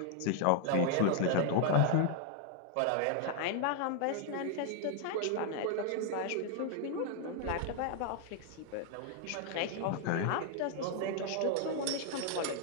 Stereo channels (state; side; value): different; both; correlation 0.00